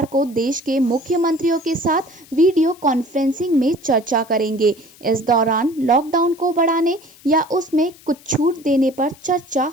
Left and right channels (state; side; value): noise; left; hiss, 24 dB below the sound